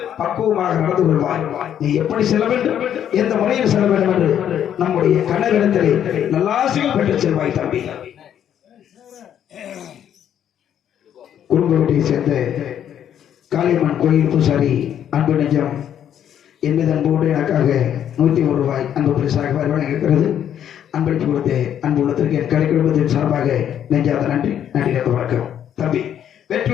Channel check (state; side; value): quieter; right; 9.8 dB